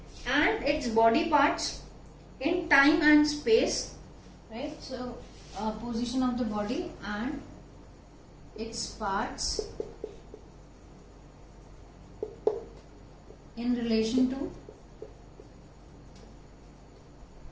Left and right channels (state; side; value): identical; both; correlation 1.00